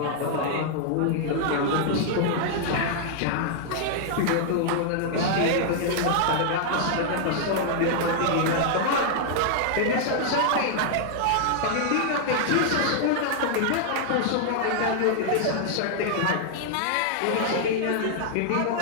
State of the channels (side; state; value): both; different; correlation -0.01